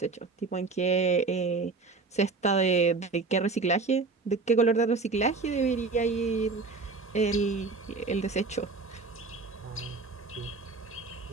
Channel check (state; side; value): quieter; left; 4.1 dB